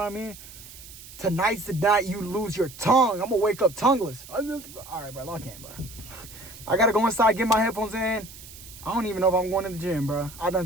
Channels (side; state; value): right; noise; hiss, 17 dB below the sound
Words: mean? Tonight's the night you lose your tongue. I'm going to wake up tongueless. All right, bro, lock in, bro. I got to go inside, get my headphones in. I don't even know if I'm going to the gym, bro. I done